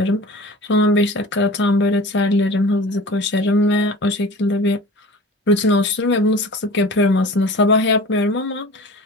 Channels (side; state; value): both; normal; correlation 0.39